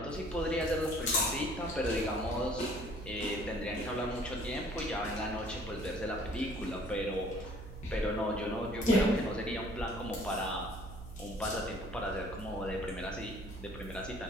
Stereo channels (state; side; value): noise; right; hum, 12 dB below the sound